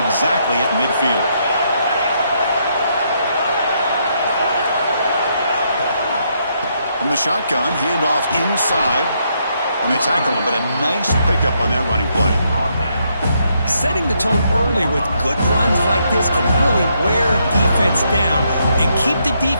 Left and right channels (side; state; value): both; inverted; correlation -0.76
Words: at midfield. From the shotgun, handoff inside. And they tackle him, but a nice pickup on that running play. Setting the tone early with good runs like this can really wear defense down and keep the